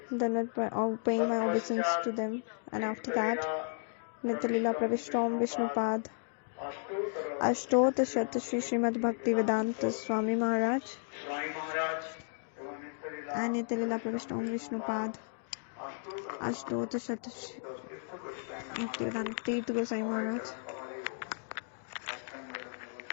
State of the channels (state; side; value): silent; right; digital silence